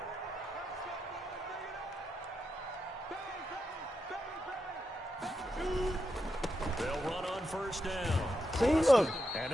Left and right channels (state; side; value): normal; both; correlation 0.85